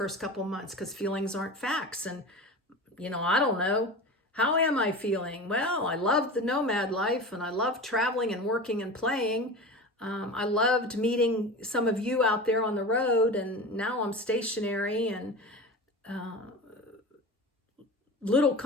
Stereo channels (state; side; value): normal; both; correlation 0.31